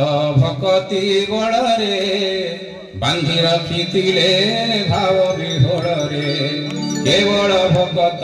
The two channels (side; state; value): both; identical; correlation 1.00